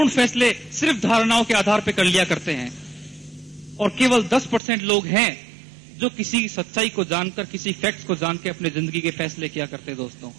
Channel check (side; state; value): left; drops out; at 4.6 s